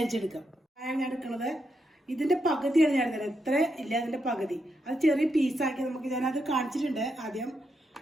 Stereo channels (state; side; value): normal; both; correlation 0.82